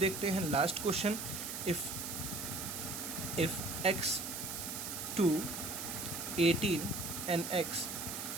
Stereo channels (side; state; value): right; noise; hiss, 5 dB below the sound